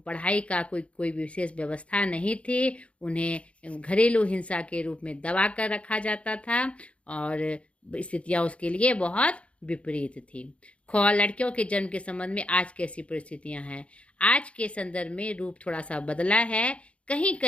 का कोई विशेष व्यवस्था नहीं थी। उन्हें घरेलू हिंसा के रूप में दबा कर रखा जाता था, और स्थितियां उसके लिए बहुत विपरीत थी। लड़कियों के जन्म के संबंध में आज कैसी परिस्थितियां हैं? आज के संदर्भ में रूप थोड़ा सा बदला है। कहीं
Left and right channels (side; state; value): right; late; 0.061 ms